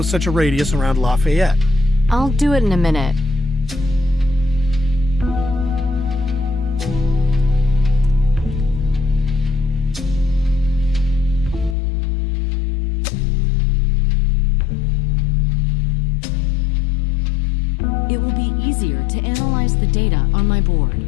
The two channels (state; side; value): drops out; right; at 11.8 s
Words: such a radius around Lafayette. I'll do it in a minute. It will be easier to analyze the data on my board.